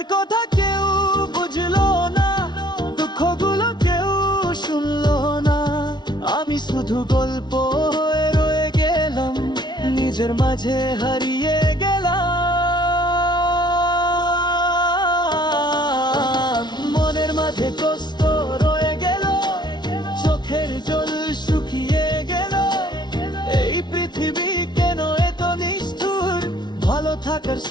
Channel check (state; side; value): late; right; 0.20 ms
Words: কথা কেউ বুঝলো না, দুঃখগুলো কেউ শুনলো না। আমি শুধু গল্প হয়ে রয়ে গেলাম, নিজের মাঝে হারিয়ে গেলাম। মনের মাঝে কষ্ট রয়ে গেল, চোখের জল শুকিয়ে গেল। এই পৃথিবী কেন এত নিষ্ঠুর, ভালো থাকার